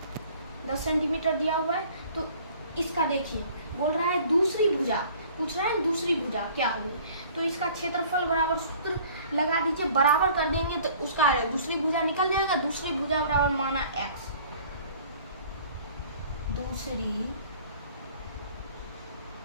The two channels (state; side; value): inverted; both; correlation -0.52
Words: सेंटीमीटर दिया हुआ है। तो इसका देखिए, बोल रहा है दूसरी भुजा, पूछ रहा है दूसरी भुजा क्या होगी, तो इसका क्षेत्रफल बराबर सूत्र लगा दीजिए, बराबर कर देंगे तो उसका दूसरी भुजा निकल जाएगा। दूसरी भुजा बराबर माना x, दूसरी